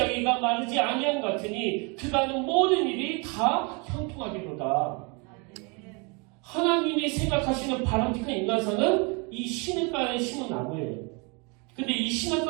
마르지 아니함 같으니 그가 하는 모든 일이 다 형통하기로다. 하나님이 생각하시는 바람직한 인간상은 이 시냇가에 심은 나무예요. 근데 이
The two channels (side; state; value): left; quieter; 31.9 dB